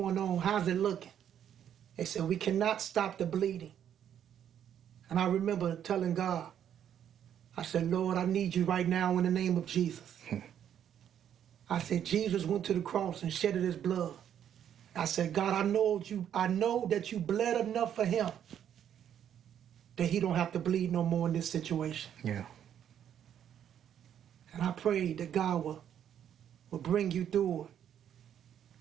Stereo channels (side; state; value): left; quieter; 9.6 dB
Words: on? How's it looking? They said, we cannot stop the bleeding. And I remember telling God, I said, Lord, I need you right now in the name of Jesus. I said, Jesus went to the cross and shedded his blood. I said, God, I know that you bled enough for him that he don't have to bleed no more in this situation. Yeah. And I prayed that God will bring you through it.